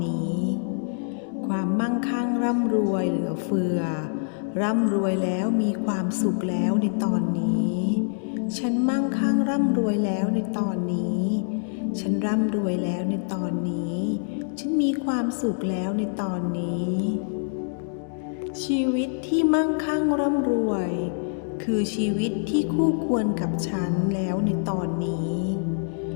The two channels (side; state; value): right; silent; digital silence